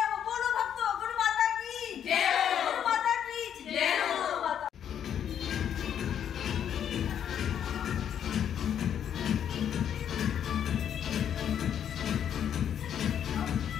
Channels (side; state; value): right; quieter; 9.2 dB